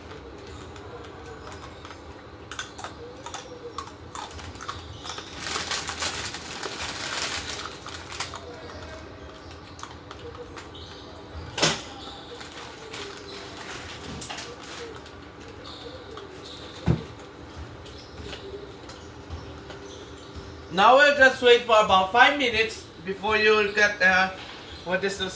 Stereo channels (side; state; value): both; identical; correlation 1.00